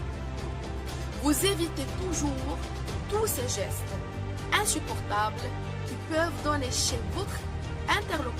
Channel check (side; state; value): both; identical; correlation 1.00